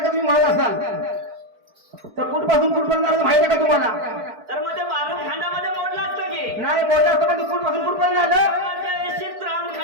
तुम्ही म्हणत असाल तर कुठपासून कुठपर्यंत माहिती आहे का तुम्हाला तर मध्ये बालू खंडामध्ये मोडला असतं नाही बोलला असतं पण कुठपासून कुठपर्यंत आलं एशीत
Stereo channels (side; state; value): left; late; 4.5 ms